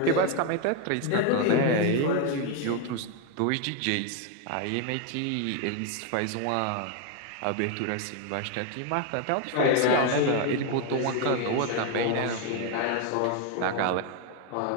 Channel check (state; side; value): different; both; correlation 0.01